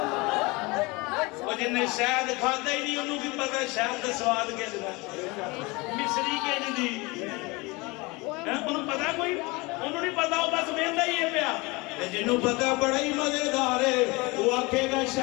جنہیں شاید کھاتا ہی نہیں انہوں کی پتہ شاید کا سواد کے جدا مصری کے جدی انہوں پتہ کوئی انہوں نہیں پتہ ہو بس بیندہ ہی ہے پیا جنہوں پتہ بڑا ہی مزیدار ہے وہ آکھے گا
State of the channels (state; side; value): quieter; right; 25.0 dB